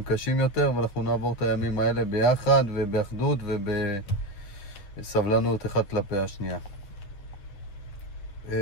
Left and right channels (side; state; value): right; late; 10 ms